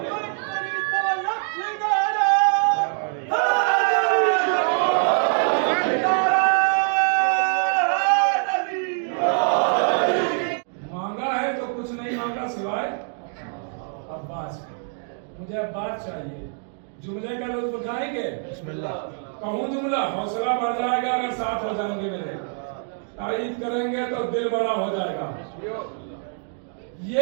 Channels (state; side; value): silent; left; 60 dB below the other